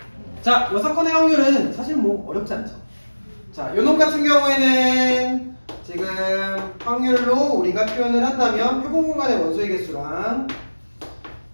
자, 여사건의 확률은 사실 어렵지 않죠. 자, 요놈 같은 경우에는 지금 확률로 우리가 표현을 한다면 표본 공간의 원소의 개수랑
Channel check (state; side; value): inverted; both; correlation -1.00